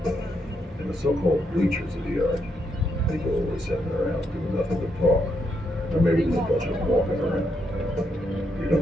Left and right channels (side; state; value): both; normal; correlation 0.79